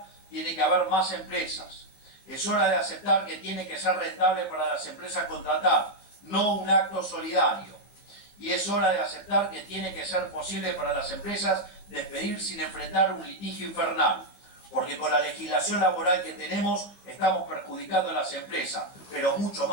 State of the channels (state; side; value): late; right; 15 ms